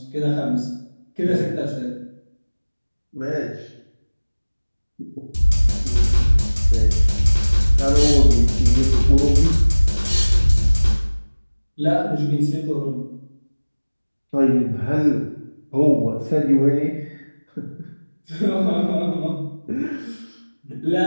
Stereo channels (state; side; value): inverted; both; correlation -1.00